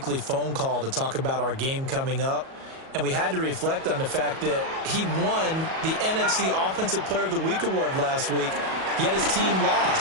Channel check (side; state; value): left; late; 37 ms